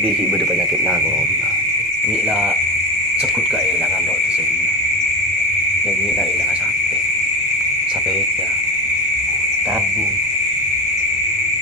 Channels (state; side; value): normal; both; correlation 0.22